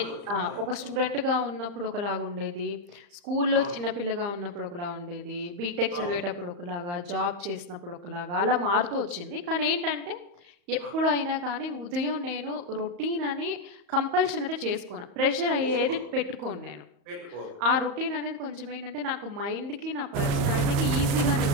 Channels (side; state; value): left; late; 34 ms